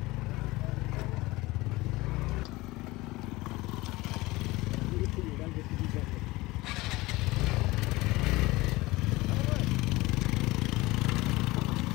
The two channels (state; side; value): quieter; right; 20.7 dB